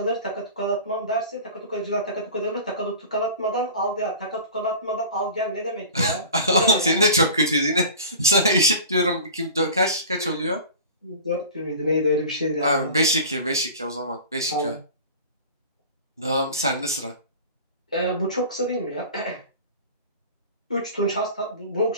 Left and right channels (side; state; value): both; inverted; correlation -0.38